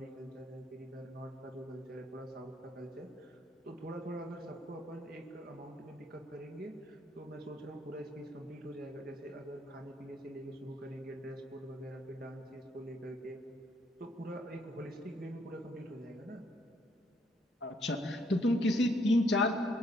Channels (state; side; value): normal; both; correlation 0.70